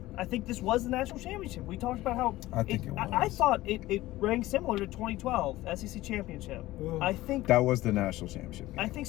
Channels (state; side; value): quieter; right; 17.0 dB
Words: I think this was the national championship. We talked about how I think it I was. thought it rang similar to 2012 SEC championship. Ugh. I think That was the national championship game. I think